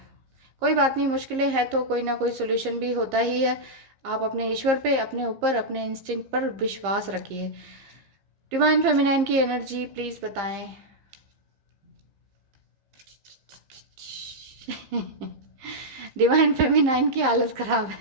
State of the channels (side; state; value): left; late; 15 ms